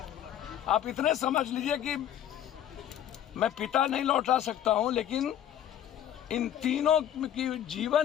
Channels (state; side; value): quieter; right; 10.6 dB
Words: आप इतने समझ लीजिए कि मैं पिता नहीं लौटा सकता हूं, लेकिन इन तीनों की